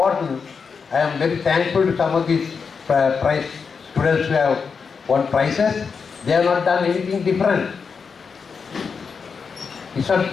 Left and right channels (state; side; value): quieter; right; 5.6 dB